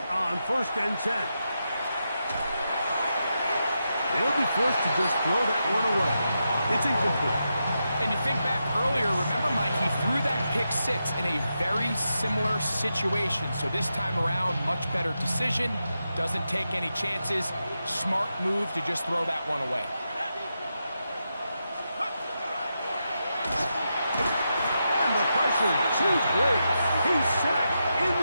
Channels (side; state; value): both; inverted; correlation -0.87